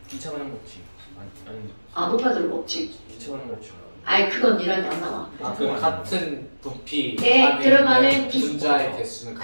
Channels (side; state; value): both; inverted; correlation -1.00